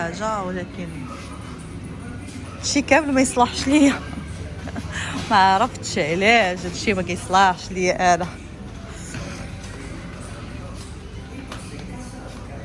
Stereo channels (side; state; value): both; identical; correlation 1.00